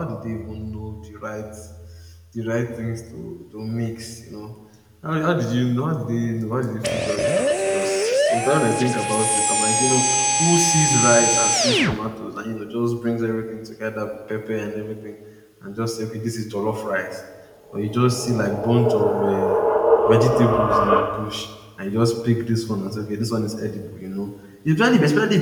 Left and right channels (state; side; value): identical; both; correlation 1.00